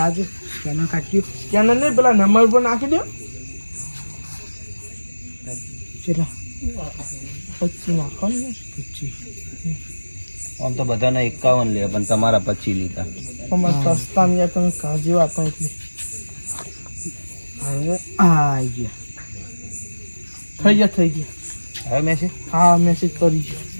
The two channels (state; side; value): inverted; both; correlation -1.00